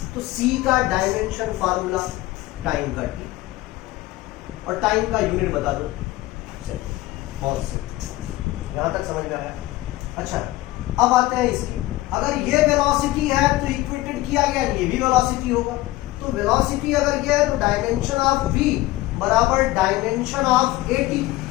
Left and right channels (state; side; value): quieter; right; 17.8 dB